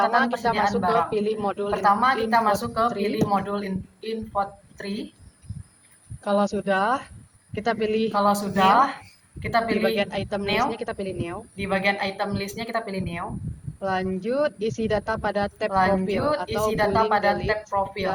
persediaan barang. Pilih modul Pertama kita masuk ke pilih modul info 3. Kalau sudah, kita pilih kita pilih di bagian item listnya kita pilih new. Di bagian item listnya kita pilih new. Lanjut isi data pada tab profil atau tab profil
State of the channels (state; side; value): identical; both; correlation 1.00